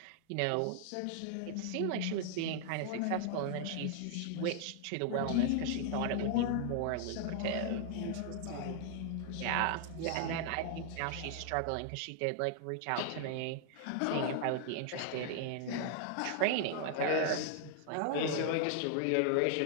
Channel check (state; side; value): different; both; correlation -0.01